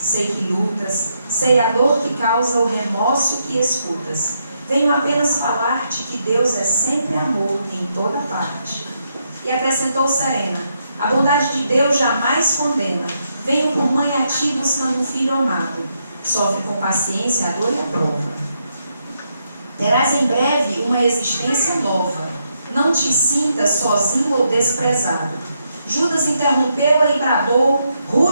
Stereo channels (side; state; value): both; inverted; correlation -0.79